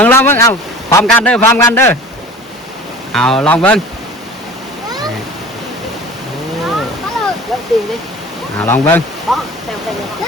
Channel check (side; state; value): both; normal; correlation 0.41